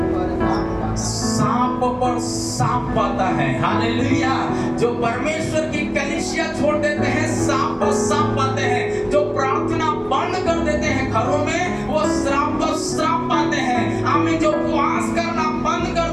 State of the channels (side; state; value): both; identical; correlation 1.00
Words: सांप पर सांप पाता है। हालेलुया। जो परमेश्वर की कलीसिया छोड़ देते हैं सांप पर सांप पाते हैं, जो प्रार्थना बंद कर देते हैं घरों में वो श्राप पर श्राप पाते हैं। आमीन। जो उपवास करना बंद